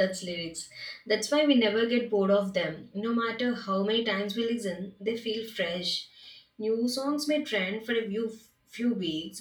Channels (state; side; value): identical; both; correlation 1.00